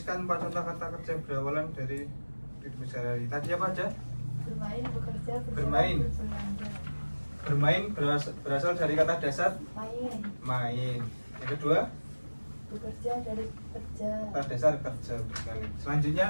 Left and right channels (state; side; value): inverted; both; correlation -1.00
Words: 4 contoh kata kerja berawalan dari kehidupan sehari-hari. Tadi apa aja? Bermain, bekerja, berjalan, Bermain. berbelanja. Bermain berasal dari kata dasar Main, main. Yang kedua, bekerja dari kerja. kata dasar kerja sekali. Selanjutnya